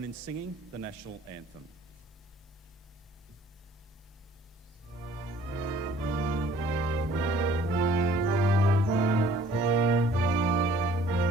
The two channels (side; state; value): both; normal; correlation 0.55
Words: in singing the National Anthem.